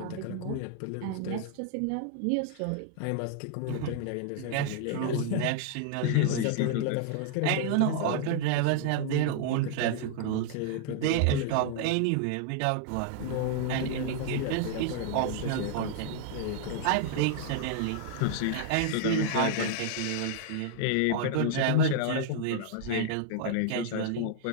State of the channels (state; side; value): different; both; correlation 0.00